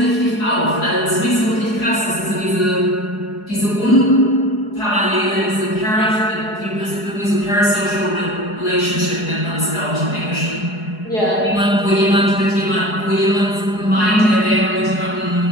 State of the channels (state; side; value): late; right; 4.8 ms